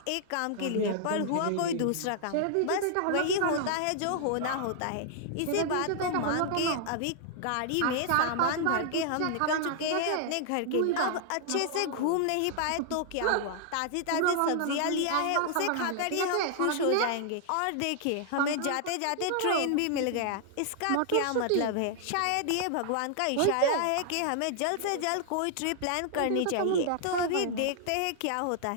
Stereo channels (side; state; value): both; different; correlation -0.01